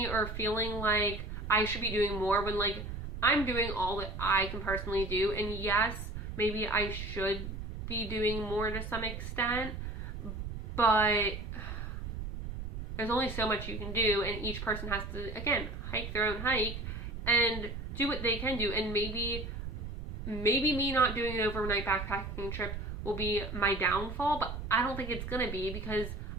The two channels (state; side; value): noise; right; rumble, 7 dB below the sound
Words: or feeling like I should be doing more when like I'm doing all that I can personally do. And yes, maybe I should be doing more to some extent, but there's only so much you can do, and each person has to, again, hike their own hike, and do what they can do. And maybe me not doing an overnight backpacking trip will be my downfall, but I don't think it's gonna be, because